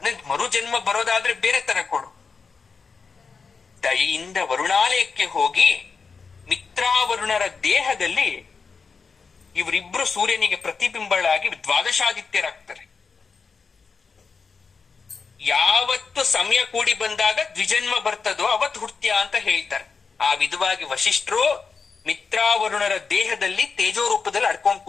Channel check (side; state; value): right; quieter; 5.1 dB